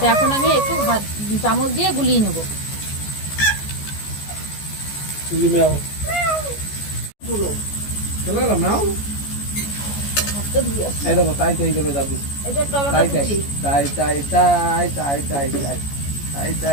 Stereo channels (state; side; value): late; right; 14 ms